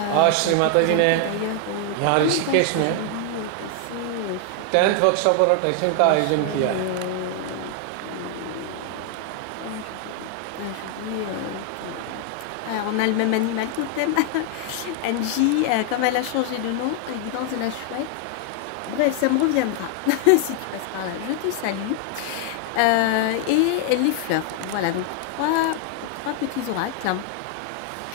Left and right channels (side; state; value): both; different; correlation 0.00